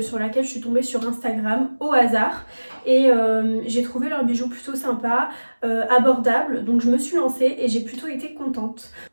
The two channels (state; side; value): inverted; both; correlation -1.00